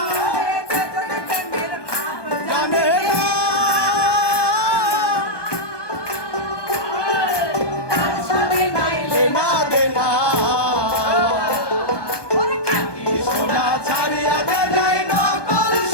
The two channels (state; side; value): late; right; 1.2 ms